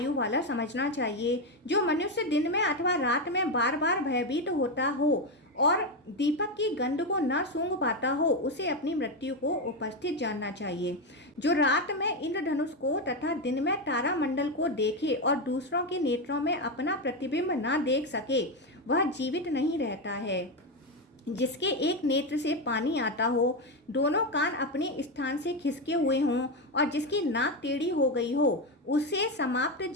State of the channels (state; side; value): normal; both; correlation 0.10